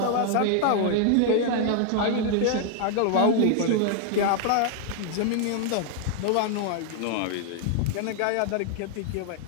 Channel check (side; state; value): both; different; correlation 0.00